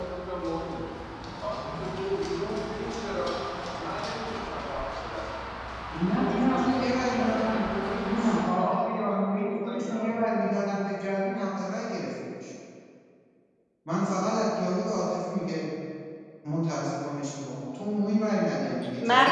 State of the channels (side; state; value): both; identical; correlation 1.00